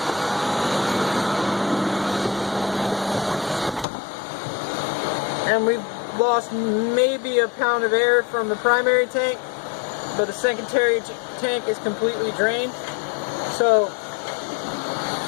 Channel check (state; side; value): drops out; right; at 3.9 s